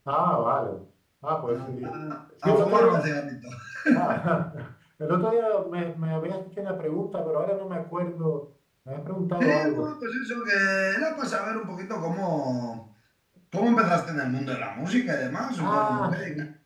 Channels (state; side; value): identical; both; correlation 1.00